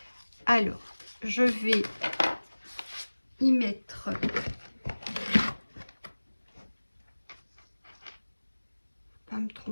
Alors, je vais y mettre pas me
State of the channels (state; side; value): inverted; both; correlation -1.00